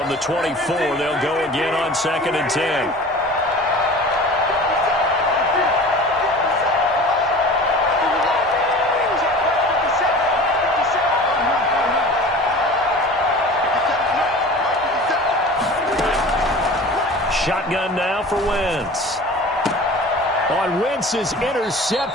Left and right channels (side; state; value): both; normal; correlation 0.40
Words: the 24, they'll go again on 2nd and 10. Shotgun now for Wentz. On Wentz is